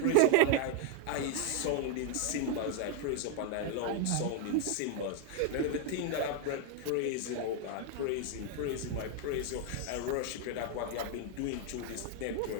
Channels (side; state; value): both; different; correlation 0.00